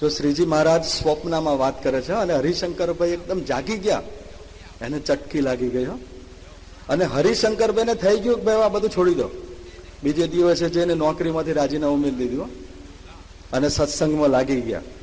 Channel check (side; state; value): both; identical; correlation 1.00